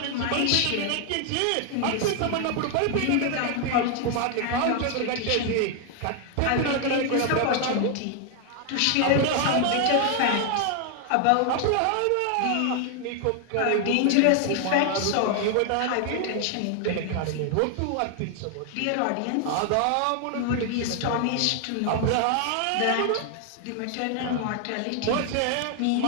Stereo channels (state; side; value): different; both; correlation 0.00